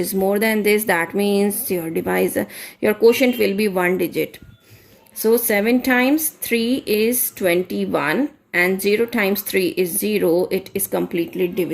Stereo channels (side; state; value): both; identical; correlation 1.00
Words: more than this. That means your divisor, your quotient will be 1 digit. So 7 times 3 is 21 and 0 times 3 is 0. It is completely